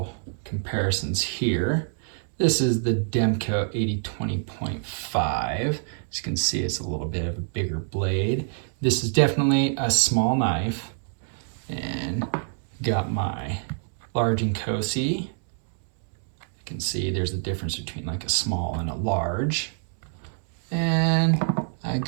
comparisons here. This is the Demco 8020.5. As you can see, it's a little bit of a bigger blade. This is definitely a small knife. And got my large Inkosi. You can see there's a difference between like a small and a large. And I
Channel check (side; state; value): left; silent; 61 dB below the other